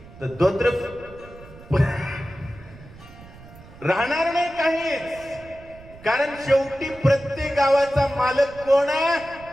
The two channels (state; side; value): noise; right; rumble, 20 dB below the sound